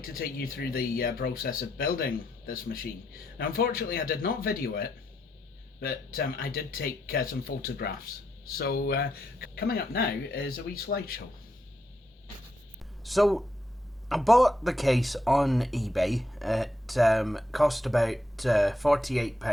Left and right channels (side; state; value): both; normal; correlation 0.80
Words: to take you through the process of building this machine. Now, unfortunately I did not video it, but I did take some photographs. So coming up now is a wee slideshow. So I bought the case on eBay. It cost about